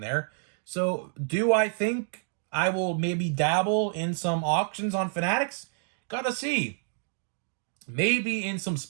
there. So do I think I will maybe dabble in some auctions on Fanatics? Gotta see. Maybe in some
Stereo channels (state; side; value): silent; left; digital silence